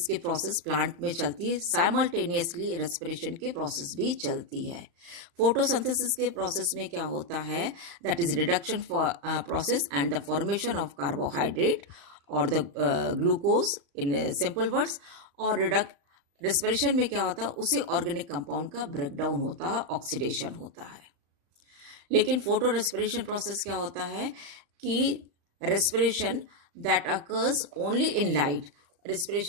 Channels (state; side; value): late; left; 35 ms